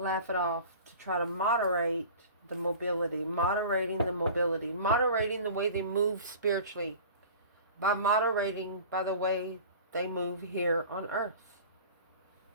it off to try to moderate the mobility, moderating the way they move spiritually, by moderating by the way they move here on earth.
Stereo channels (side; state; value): both; inverted; correlation -0.41